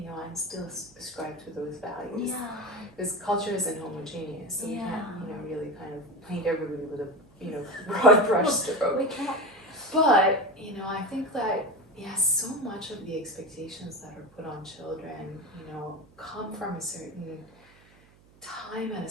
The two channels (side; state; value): right; noise; hum, 28 dB below the sound